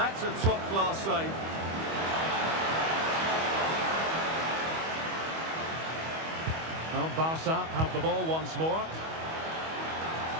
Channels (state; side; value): late; left; 25 ms